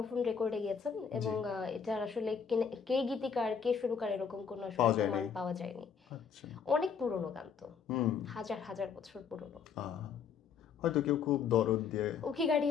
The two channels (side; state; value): right; quieter; 6.6 dB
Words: রেকর্ডে গিয়েছেন এবং এটার আসলে কে গীতিকার কে সুরকার এরকম কোনো প্রমাণ পাওয়া যায়নি। অনেক পুরনো গান তো, হাজার হাজার বছর পুরনো। হয়তো কেউ খুব দরদ দিয়ে ওকে